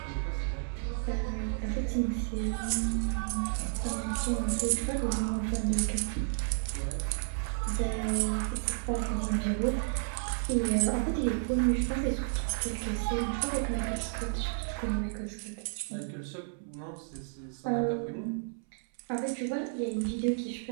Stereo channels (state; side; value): silent; left; 56 dB below the other